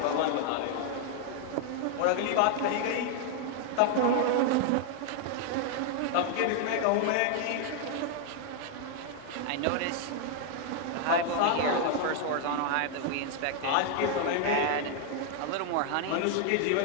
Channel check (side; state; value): both; different; correlation 0.00